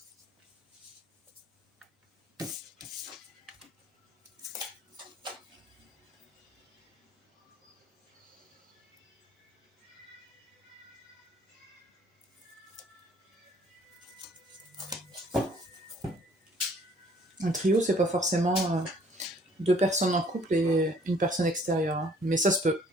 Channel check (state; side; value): normal; both; correlation 0.58